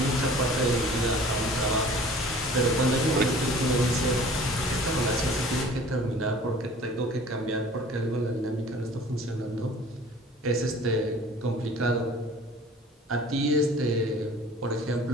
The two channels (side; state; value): both; normal; correlation 0.47